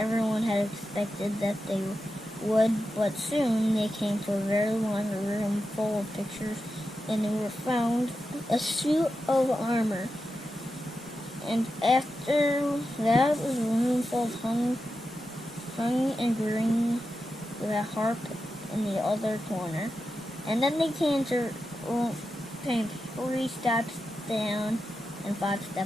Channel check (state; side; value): normal; both; correlation 0.90